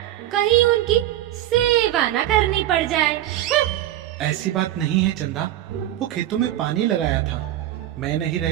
कहीं उनकी सेवा न करनी पड़ जाए। ऐसी बात नहीं है चंदा, वो खेतों में पानी लगाया था। मैं नहीं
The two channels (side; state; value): left; quieter; 13.2 dB